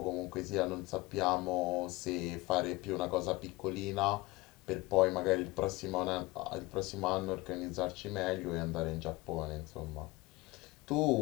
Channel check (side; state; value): right; quieter; 21.2 dB